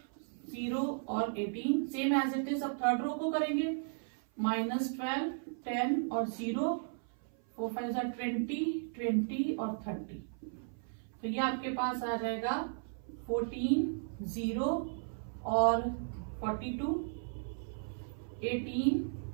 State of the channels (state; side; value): silent; left; 54 dB below the other